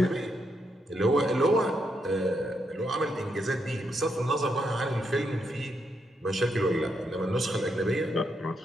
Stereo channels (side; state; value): both; normal; correlation 0.80